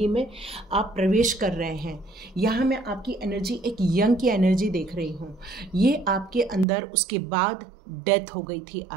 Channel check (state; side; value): drops out; left; at 6.7 s